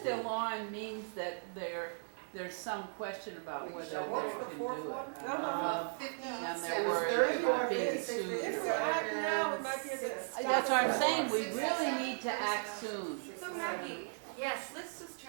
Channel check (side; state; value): left; silent; digital silence